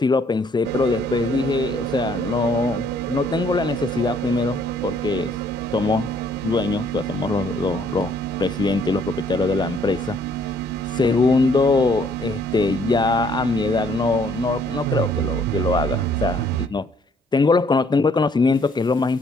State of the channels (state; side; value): normal; both; correlation 0.64